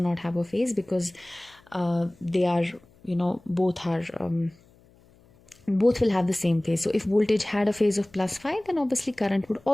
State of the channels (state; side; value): noise; left; hum, 29 dB below the sound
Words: have a phase, because they are, both will have the same phase. So if voltage had a phase of plus phi, then obviously current would